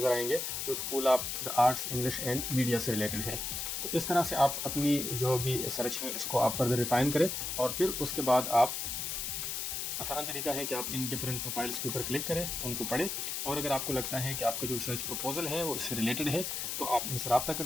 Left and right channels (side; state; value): left; noise; hiss, 3 dB below the sound